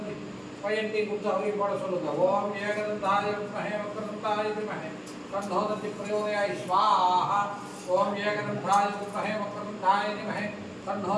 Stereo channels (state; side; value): identical; both; correlation 1.00